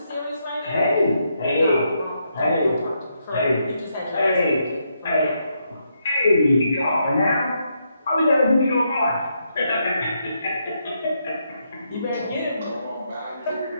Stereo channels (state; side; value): inverted; both; correlation -0.79